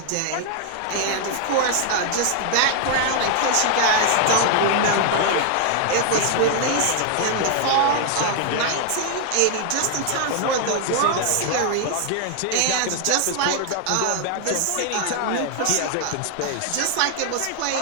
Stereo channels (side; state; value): both; different; correlation 0.00